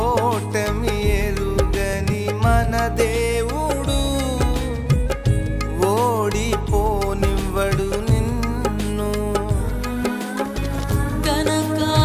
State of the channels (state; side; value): identical; both; correlation 1.00